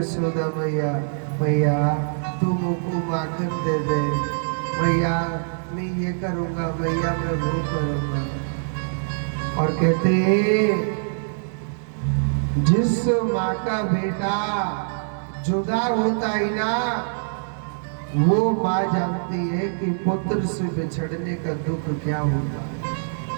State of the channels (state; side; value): silent; left; digital silence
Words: मैया, भैया तू मुझको माखन दे दे, भैया मैं ये करूँगा, भैया मैं वो करूँगा। और कहते जिस माँ का बेटा जुदा होता है ना, वो माँ जानती है कि पुत्र से बिछड़ने का दुख क्या होता है।